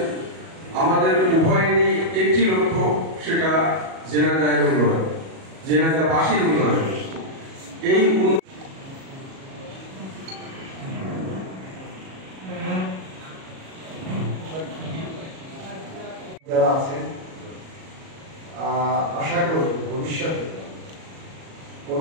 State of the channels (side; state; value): left; late; 37 ms